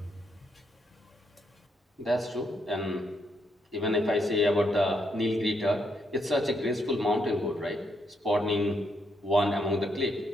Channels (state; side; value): normal; both; correlation 0.77